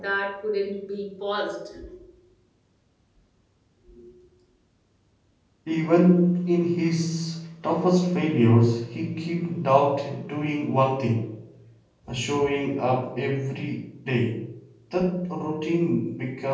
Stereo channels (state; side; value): identical; both; correlation 1.00